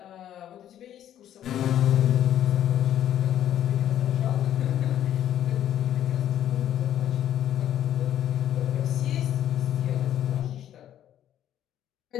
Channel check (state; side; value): quieter; right; 11.2 dB